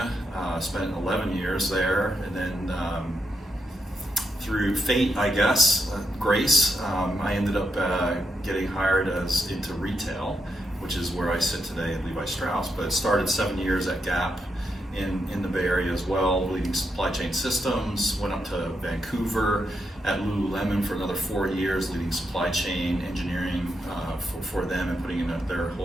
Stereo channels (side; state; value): both; normal; correlation 0.82